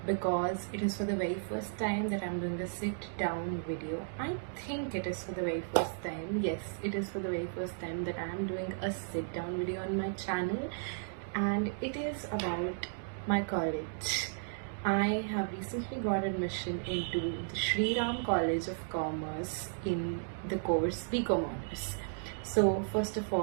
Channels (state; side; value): silent; left; digital silence